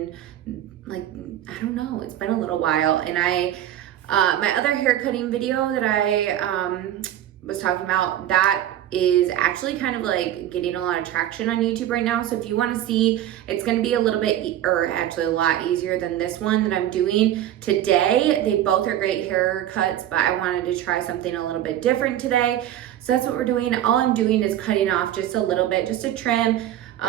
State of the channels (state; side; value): quieter; left; 12.0 dB